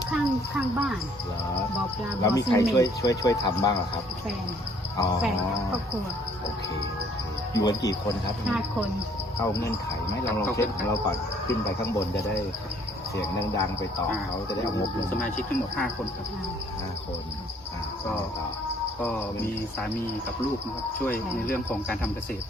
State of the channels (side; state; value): both; normal; correlation 0.61